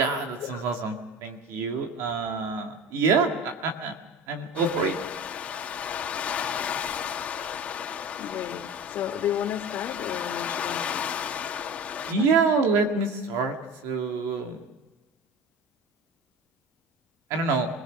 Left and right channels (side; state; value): both; normal; correlation 0.33